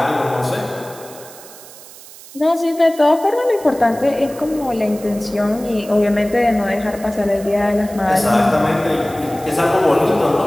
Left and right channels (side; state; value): right; noise; hiss, 19 dB below the sound